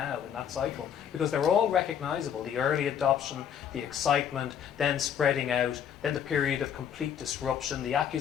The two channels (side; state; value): right; quieter; 8.8 dB